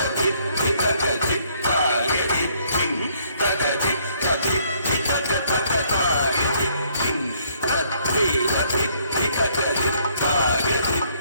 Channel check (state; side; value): inverted; both; correlation -0.67